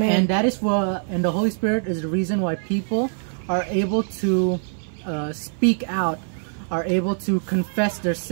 that is what, and the Holy Spirit is the reason why people are able to speak out, are able to confess their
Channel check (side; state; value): left; silent; 56 dB below the other